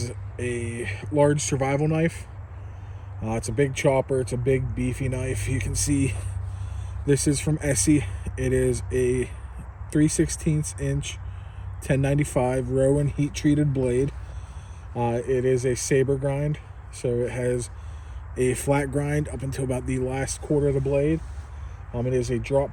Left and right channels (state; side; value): identical; both; correlation 1.00